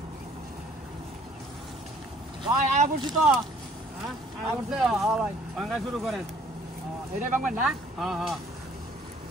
ভাই আয়া পড়ছি তো। হ্যাঁ ভাই ভাঙ্গা শুরু করেন। এটাই বাংবেন না? হ্যাঁ হ্যাঁ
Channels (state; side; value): normal; both; correlation 0.58